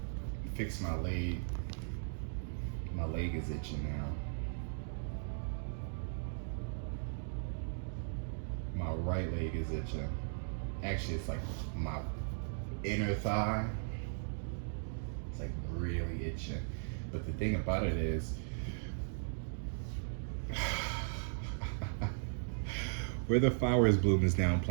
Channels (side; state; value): left; silent; digital silence